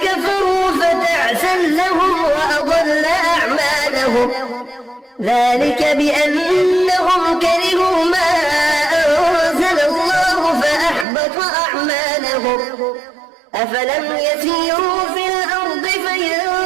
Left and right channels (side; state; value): left; drops out; at 11.1 s